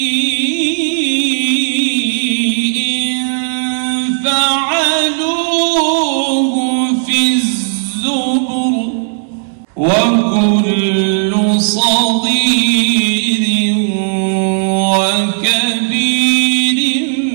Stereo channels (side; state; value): left; silent; digital silence